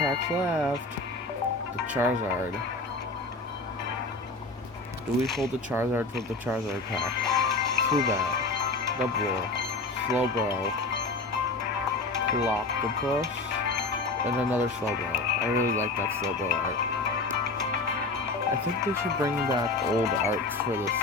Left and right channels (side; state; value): right; quieter; 3.3 dB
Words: left. The Charizard. Do we pull the Charizard from the Charizard pack? Zubat, Double, Slowbro, Clockopus, and another Slowbro. I really like that Slowbro art. I think they should bring back old arts for this